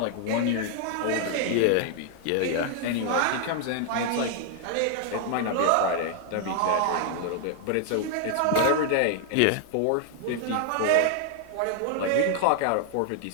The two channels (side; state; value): both; different; correlation 0.00